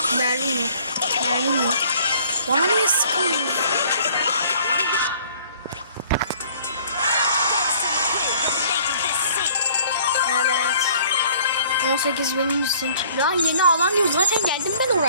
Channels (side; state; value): both; inverted; correlation -0.55